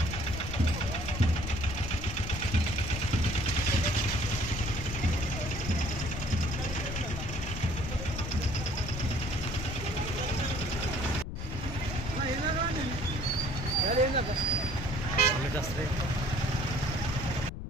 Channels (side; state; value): left; noise; rumble, 6 dB below the sound